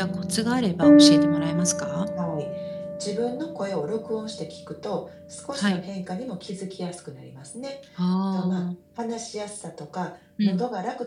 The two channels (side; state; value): both; identical; correlation 1.00